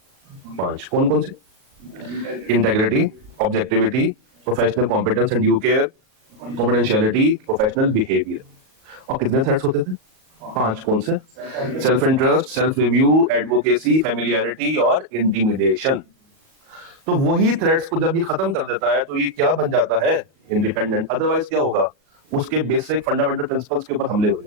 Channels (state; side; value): late; left; 38 ms